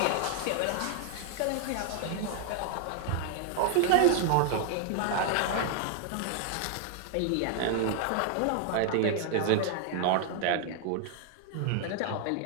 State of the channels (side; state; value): both; different; correlation 0.00